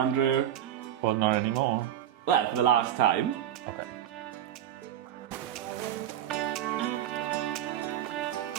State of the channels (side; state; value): left; quieter; 10.9 dB